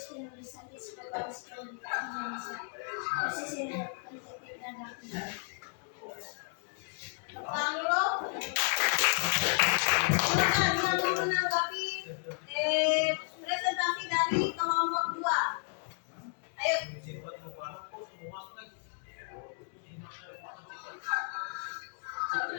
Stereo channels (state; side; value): silent; right; 56 dB below the other